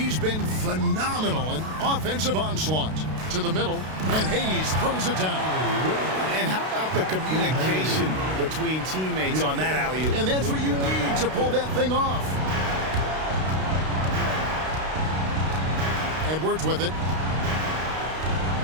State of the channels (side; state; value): left; late; 32 ms